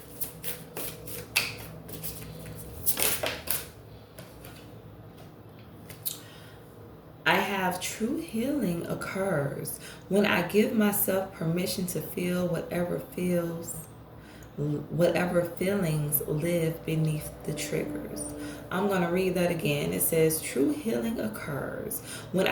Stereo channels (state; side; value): identical; both; correlation 1.00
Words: I have true healing occurs when I give myself permission to feel whatever feelings live beneath the triggers. I'm going to read that again. It says, true healing occurs when